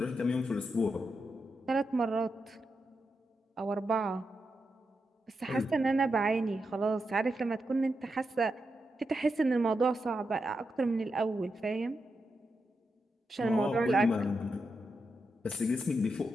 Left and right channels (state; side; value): normal; both; correlation 0.86